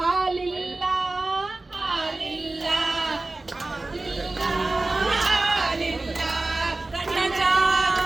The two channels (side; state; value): left; quieter; 3.1 dB